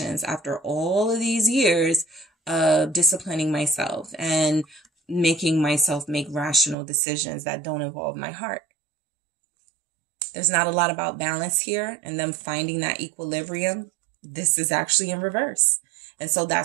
after all of these years of disciplining myself and making myself make rational decisions that don't involve my heart? There's not a lot about balance here and them finding that equilibrium. This is actually in reverse. And so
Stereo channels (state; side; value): drops out; left; at 6.8 s